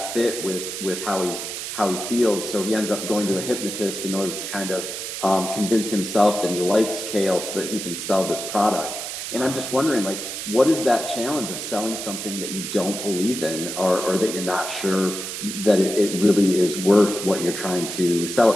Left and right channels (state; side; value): noise; right; hiss, 6 dB below the sound